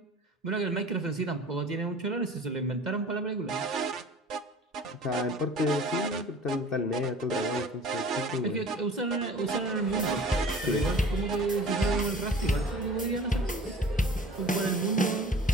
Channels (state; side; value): normal; both; correlation 0.44